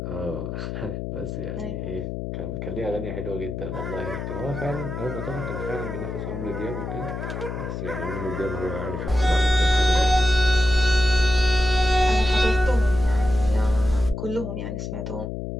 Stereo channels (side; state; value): left; noise; hum, 4 dB below the sound